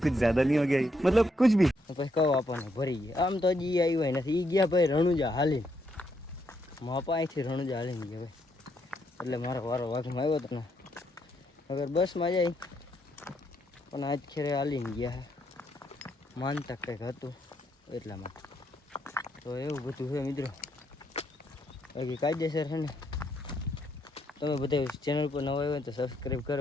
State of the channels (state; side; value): normal; both; correlation 0.76